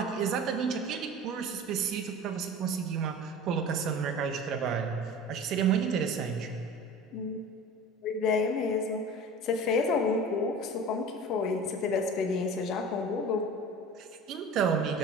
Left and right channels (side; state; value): both; normal; correlation 0.38